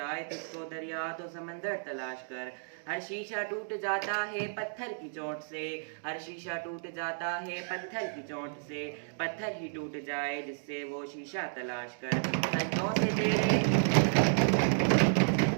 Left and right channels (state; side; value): silent; left; digital silence